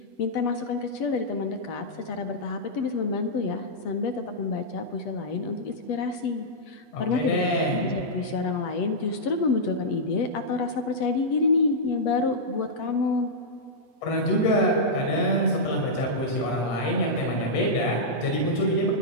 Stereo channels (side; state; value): right; late; 8.2 ms